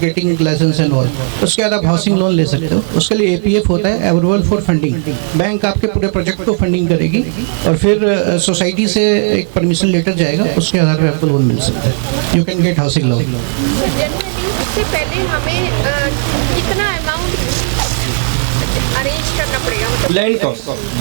licence and all. उसके बाद आप housing loan ले सकते हो। उसके लिए APF होता है, अप्रूवल फॉर फंडिंग। बैंक आपके पूरे प्रोजेक्ट को फंडिंग करेगी और फिर सोसाइटी से एक परमिशन लेटर जाएगा, उसके आधार पर आपको लोन मिल सकता है। You can get housing loan. उससे पहले हमें कितना अमाउंट अरेंज करना पड़ेगा? मतलब Land cost,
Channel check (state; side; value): silent; left; digital silence